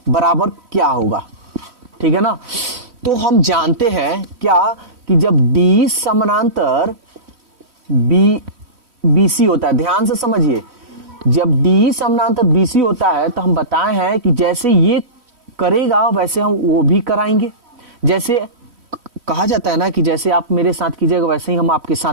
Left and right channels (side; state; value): left; late; 3.1 ms